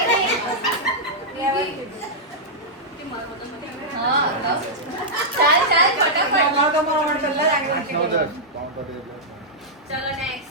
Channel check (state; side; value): normal; both; correlation -0.09